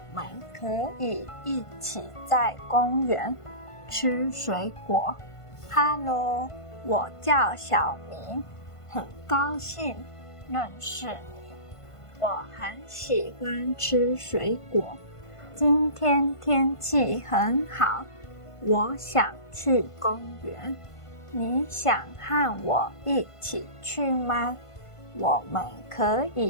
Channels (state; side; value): late; right; 1.5 ms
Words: 们可以一起在公园吃水果。Hello， 我叫小明，很高兴认识你。我很喜欢吃水果。今天天气很好，我想去公园。你想和我一起去吗？我们可